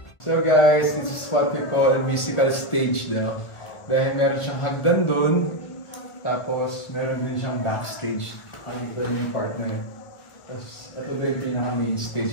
So guys, this is what we call a musical stage daw. Dahil meron siyang hagdan doon, tapos meron din siyang backstage. Ang ito yung part na yun. Tapos ito din yung pinaka-main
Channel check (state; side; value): late; right; 1.3 ms